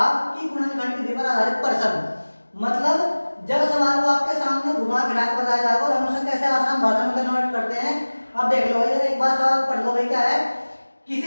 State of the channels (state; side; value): inverted; both; correlation -1.00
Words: की गुणनखंड विधि पर आधारित प्रश्न, मतलब जब सवाल को आपके सामने घुमा फिरा कर बताया जाएगा और हम उसे कैसे आसान भाषा में कन्वर्ट करते हैं। अब देख लो भाई, एक बार सवाल पढ़ लो भाई। क्या है?